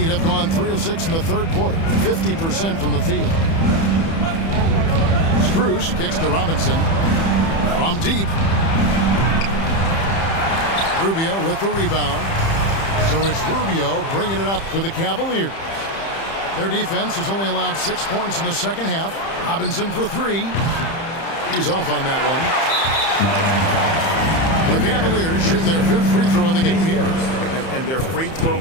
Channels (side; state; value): right; late; 30 ms